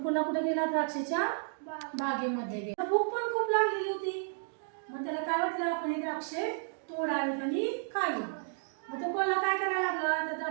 कोल्हा कुठे गेला? द्राक्षाच्या बागेमध्ये गेला. भूक पण खूप लागलेली होती. मग त्याला काय वाटलं, आपण हे द्राक्षे तोडावेत आणि खावीत. मग तो कोल्हा काय करायला लागला? त्या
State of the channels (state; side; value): silent; left; digital silence